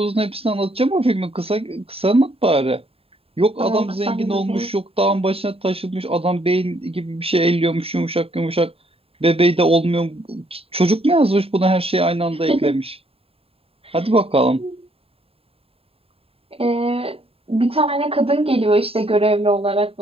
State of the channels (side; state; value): left; late; 0.28 ms